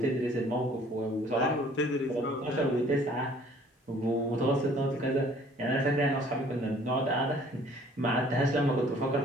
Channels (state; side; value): normal; both; correlation 0.56